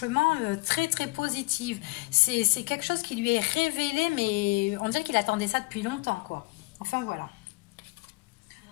très très positif. C'est quelque chose qui lui est révélé, mais on dirait qu'il attendait ça depuis longtemps, quoi. Enfin, voilà.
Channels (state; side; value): quieter; right; 26.7 dB